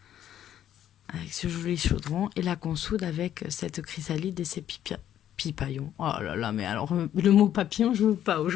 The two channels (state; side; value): quieter; right; 11.0 dB